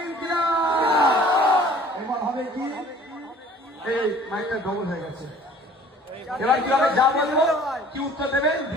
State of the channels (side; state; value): both; normal; correlation 0.51